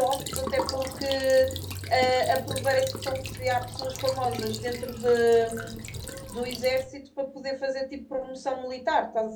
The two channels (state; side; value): identical; both; correlation 1.00